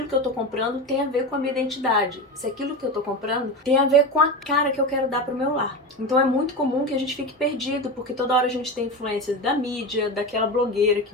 que eu tô comprando tem a ver com a minha identidade, se aquilo que eu tô comprando tem a ver com a cara que eu quero dar pro meu lar. Então é muito comum que a gente fique perdido, porque toda hora a gente tem influências da mídia, daquela blogueira que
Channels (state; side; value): normal; both; correlation 0.22